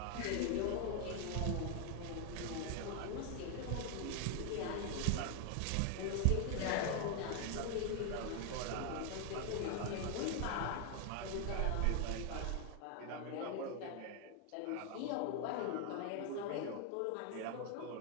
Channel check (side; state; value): both; different; correlation 0.00